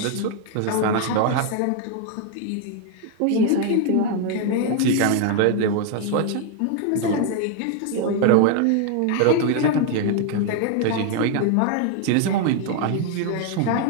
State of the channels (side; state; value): both; different; correlation 0.00